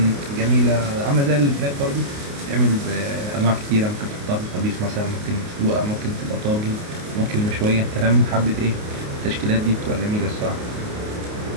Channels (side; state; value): left; late; 28 ms